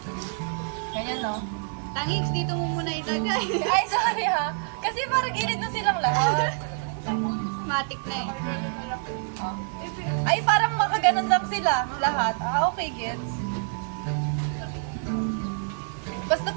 Ganyan no? Tangings, dito mo muna ilagay. Ay, sorry ha. Kasi parang gilid na silang lahat. Matic na eh. Ay, parang makaganon lang sila. Lahat. Okay, gets. Basta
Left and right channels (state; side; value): silent; left; 56 dB below the other